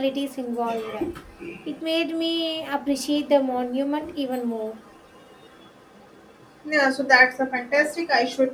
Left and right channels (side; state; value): both; identical; correlation 1.00